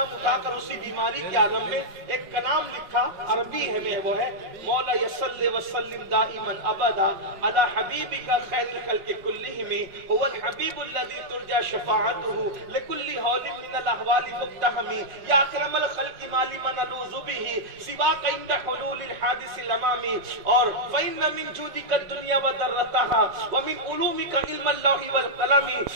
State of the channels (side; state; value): left; late; 5.4 ms